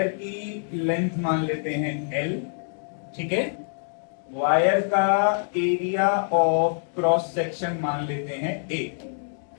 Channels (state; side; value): silent; right; digital silence